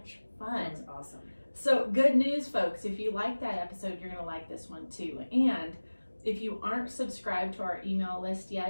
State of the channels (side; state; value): both; inverted; correlation -1.00